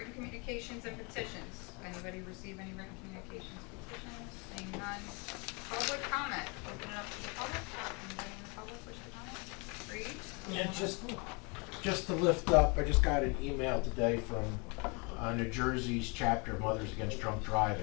communications and petitions. Anybody receive any written communications, petitions? Seeing none. Public comment. Open it up to the public. Anybody in the public wish to comment? Read. Yeah, just to lift up, I just got an email today from New Jersey's chapter of Mothers Against Drunk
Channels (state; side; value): quieter; right; 31.3 dB